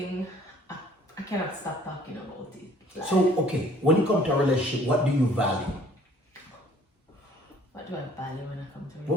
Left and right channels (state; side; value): normal; both; correlation 0.56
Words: I cannot stop talking about it. Like, So, okay, when you come to a relationship, what do you value? what do I value when I come to a